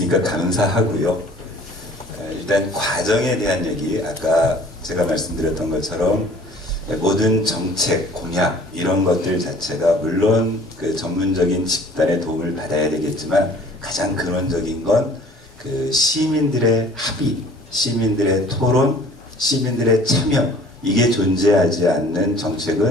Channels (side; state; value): both; normal; correlation 0.50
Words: 감사하고요. 일단 과정에 대한 얘기, 아까 제가 말씀드렸던 것처럼 모든 정책, 공약 이런 것들 자체가 물론 그 전문적인 집단의 도움을 받아야 되겠지만 가장 근원적인 건 그 시민들의 합의, 시민들의 토론, 시민들의 참여, 이게 존재하지 않는